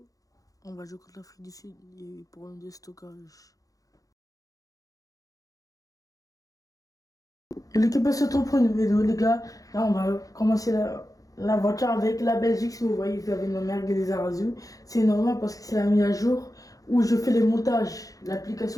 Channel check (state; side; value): late; right; 0.17 ms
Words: on va jouer contre l'Afrique du Sud pour un déstockage. Et l'équipe se retrouve pour une vidéo, les gars. Là, on va commencer la voiture avec la Belgique. Si vous voyez, vous avez nos merguez des Arazou. C'est normal parce que c'est la mise à jour où je fais les montages.